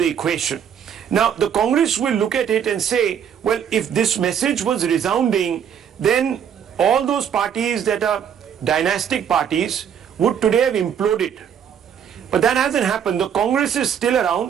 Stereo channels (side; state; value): left; quieter; 8.4 dB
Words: equation. Now, the Congress will look at it and say, well, if this message was resounding, then all those parties that are dynastic parties would today have imploded. But that hasn't happened. The Congress is still